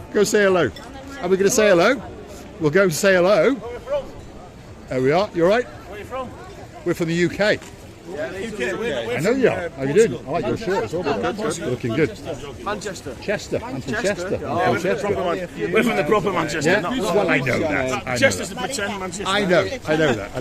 Go say hello. Are we going to say hello? We'll go and say hello. Where are you from? There we are. You all right? Where are you from? We're from the UK. UK. I know you are. How you doing? I like your shirt as well. You're looking good. Manchester. Chester. I'm from Chester. Yeah, we're from the proper Manchester. Yeah? Well, I know that. Chester's the pretend Manchester. I know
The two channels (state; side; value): identical; both; correlation 1.00